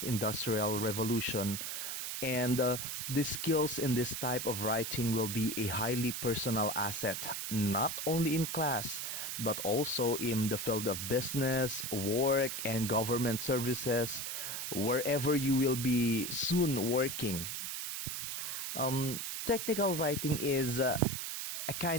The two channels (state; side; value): noise; right; hiss, 4 dB below the sound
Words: industrial revolution, and the skills in this type of writing will be a highly personal asset, not only in class, but also in the field of business, work, and government services, wherever you will be soon working. Technical writing is a